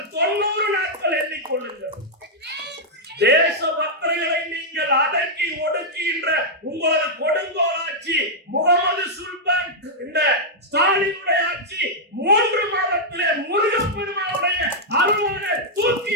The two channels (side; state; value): both; normal; correlation -0.05